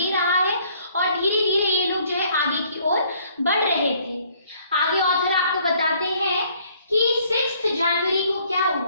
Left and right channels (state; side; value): inverted; both; correlation -0.62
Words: रहा है और धीरे धीरे ये लोग जो है आगे की ओर बढ़ रहे थे। आगे ऑथर आपको बताते हैं कि 6 जनवरी को क्या